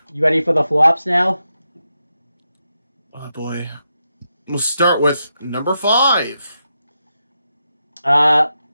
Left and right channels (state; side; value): inverted; both; correlation -0.86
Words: You ready for the flops now? Oh boy. We'll start with number 5.